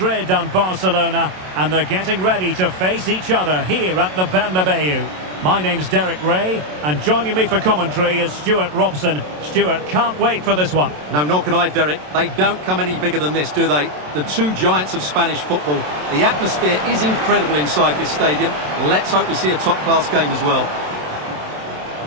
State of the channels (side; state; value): left; late; 27 ms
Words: and Barcelona, and they're getting ready to face each other here at the Bernabeu. My name's Derek Ray, and joining me for commentary is Stuart Robson. Stuart, can't wait for this one. No, nor can I, Derek. They don't come any bigger than this, do they? The two giants of Spanish football. The atmosphere is incredible inside this stadium. Let's hope we see a top-class game as well.